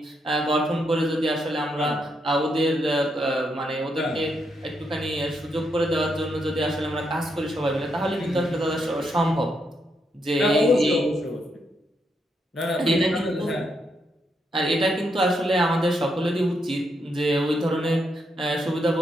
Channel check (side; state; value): both; normal; correlation 0.79